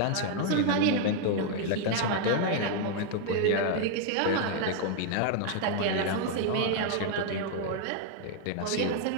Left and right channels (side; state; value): both; different; correlation 0.00